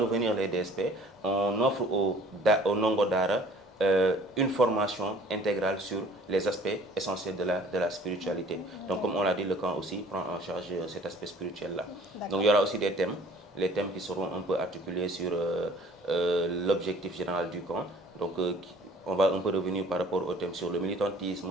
les DSP, on offre au Nongo Dara une formation intégrale sur les aspects essentiels de la spiritualité. Donc, comme on l'a dit, le camp aussi prend en charge cet aspect spirituel-là. Donc, il y aura aussi des thèmes, les thèmes qui seront un peu articulés sur l'objectif général du camp. Donc, on va un peu revenir par rapport au thème sur le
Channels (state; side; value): normal; both; correlation 0.51